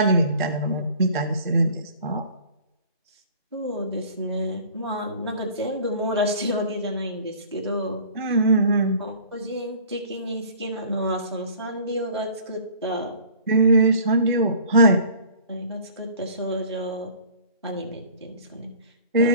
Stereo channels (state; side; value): inverted; both; correlation -0.48